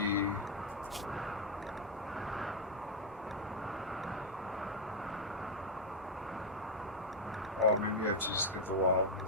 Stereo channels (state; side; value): normal; both; correlation 0.00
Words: Oh, maybe you have to just get the